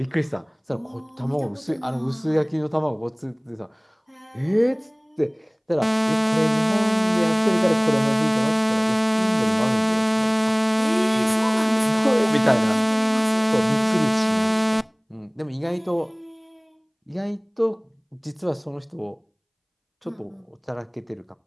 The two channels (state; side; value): identical; both; correlation 1.00